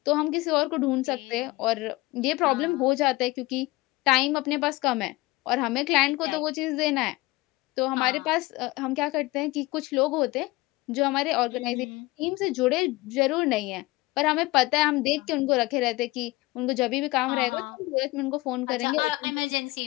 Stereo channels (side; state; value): right; quieter; 21.2 dB